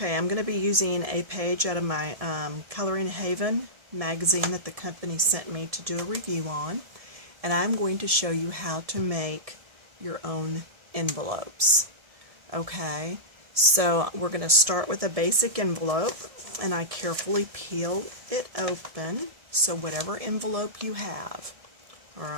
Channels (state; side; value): late; left; 1.7 ms